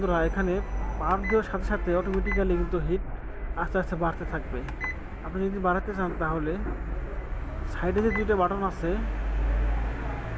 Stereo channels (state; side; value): identical; both; correlation 1.00